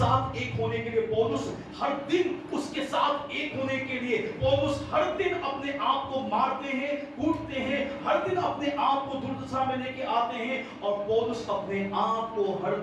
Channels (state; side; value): identical; both; correlation 1.00